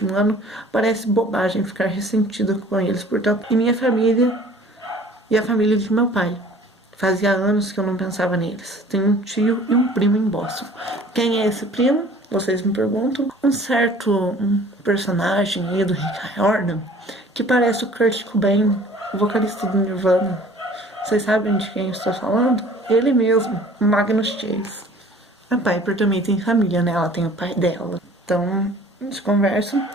ano, parece bobagem ficar ressentida com eles, portanto, e minha família e a família de meu pai. Fazia anos que eu não pensava neles. Tenho um tio e um primo em Boston. Quem é esse primo? Vocês me perguntam. Um certo personagem aí do Rick Riordan, que parece o Kurt Cobain, o vocalista do Nirvana. Vocês sabem de quem eu estou falando? Ele mesmo, Magnus Chase. A Piper também tem família, né? Ela tem o pai dela. Então, eles conversam.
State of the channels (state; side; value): normal; both; correlation 0.50